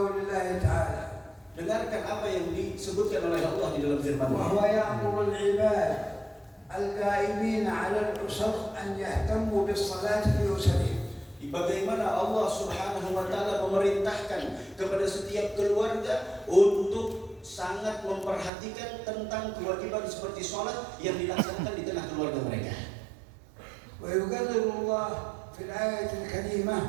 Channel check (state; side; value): drops out; left; at 18.5 s